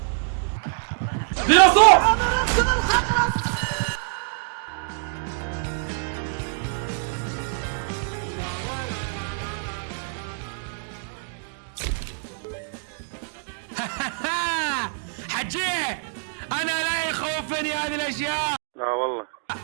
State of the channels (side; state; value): left; silent; digital silence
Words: ديناصور. حجيه انا لا يخوفني هذه الاشياء. لا والله.